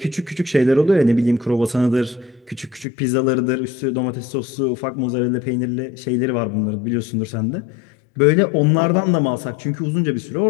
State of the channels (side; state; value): right; drops out; at 2.9 s